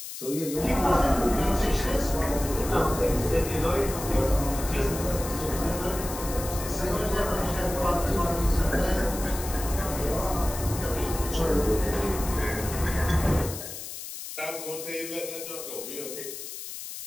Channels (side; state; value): left; noise; hiss, 9 dB below the sound